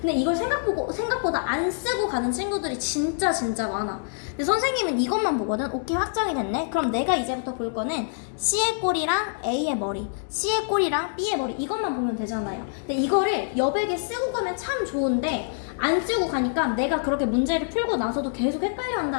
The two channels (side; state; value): right; silent; digital silence